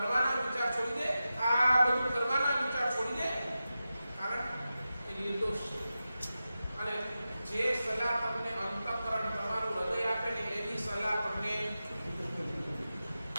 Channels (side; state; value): both; inverted; correlation -0.93